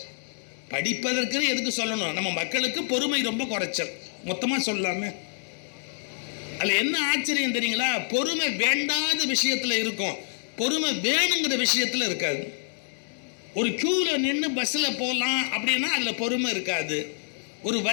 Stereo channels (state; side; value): silent; right; digital silence